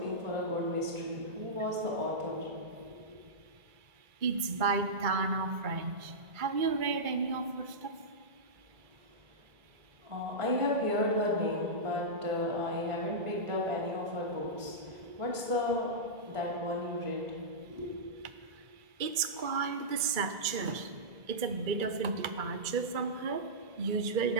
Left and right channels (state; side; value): late; left; 2.3 ms